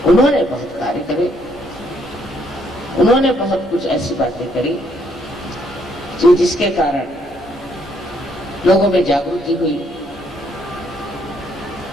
उन्होंने बहुत कार्य करे, उन्होंने बहुत कुछ ऐसी बातें करी जो जिसके कारण लोगों में जागृति हुई,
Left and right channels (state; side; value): normal; both; correlation 0.70